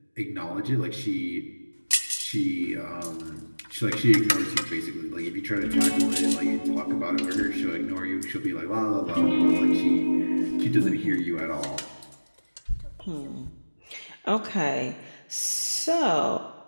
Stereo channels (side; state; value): both; inverted; correlation -1.00